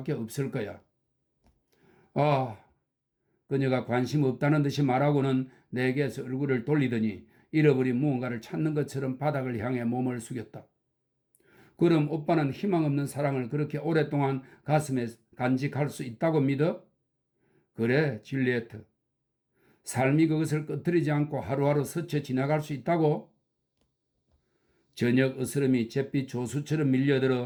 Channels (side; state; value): both; identical; correlation 1.00